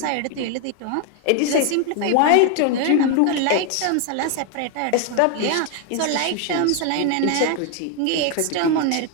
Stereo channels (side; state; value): both; different; correlation 0.01